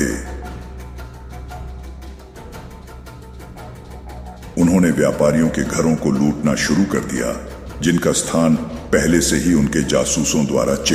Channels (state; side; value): identical; both; correlation 1.00